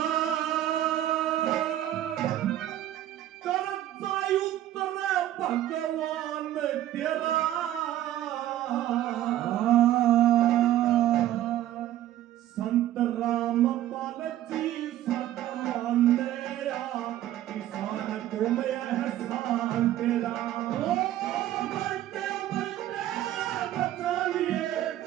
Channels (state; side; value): quieter; left; 13.1 dB